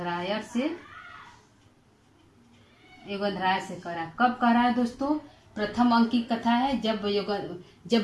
योगेंद्राय से कह रहा है। कब कह रहा है दोस्तों? प्रथम अंक की कथा है, जब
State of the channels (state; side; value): identical; both; correlation 1.00